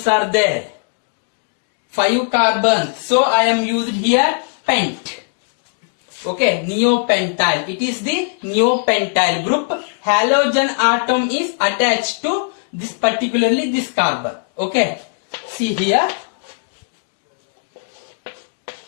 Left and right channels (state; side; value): silent; right; digital silence